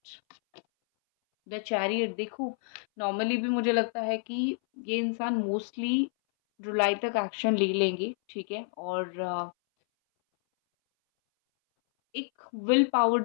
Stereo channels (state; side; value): silent; right; 58 dB below the other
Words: the chariot. देखो, नॉर्मली भी मुझे लगता है कि ये इंसान मोस्टली जुलाई तक एक्शन ले लेंगे। ठीक है, और एक विल पावर